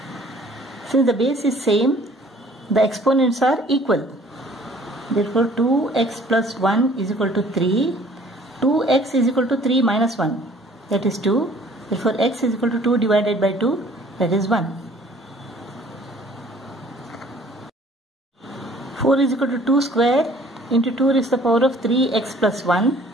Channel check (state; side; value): normal; both; correlation 0.55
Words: Since the base is same, the exponents are equal. Therefore 2x plus 1 is equal to 3. 2x is equal to 3 minus 1, that is 2. Therefore x is equal to 2 divided by 2, that is 1. 4 is equal to 2 square into 2 raised to the power of 3x plus 1.